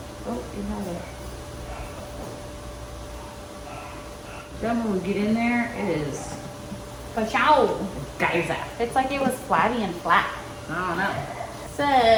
Oh, you have it. Then when we get in there, it is Ka-chow. geyser. It's like it was flabby and flat. I don't know.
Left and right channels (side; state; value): both; identical; correlation 1.00